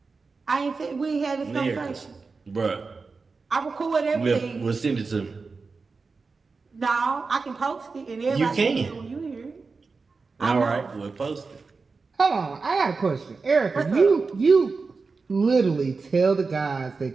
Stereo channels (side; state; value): left; quieter; 4.4 dB